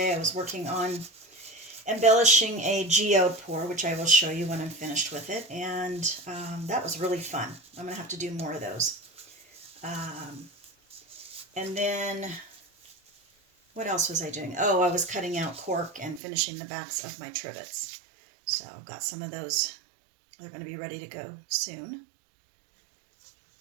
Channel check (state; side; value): drops out; left; at 16.2 s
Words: I was working on embellishing a geode pour, which I will show you when I'm finished with it, and that was really fun. I'm gonna have to do more of those. And then what else was I doing? Oh, I was cutting out cork and finishing the backs of my trivets. So I've got some of those. They're going to be ready to go soon.